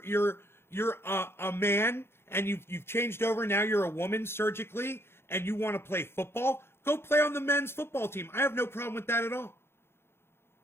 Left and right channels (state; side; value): late; right; 0.12 ms